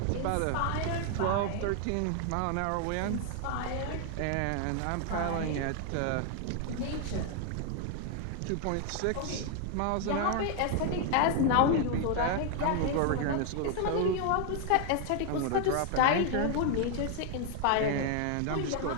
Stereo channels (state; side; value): different; both; correlation 0.00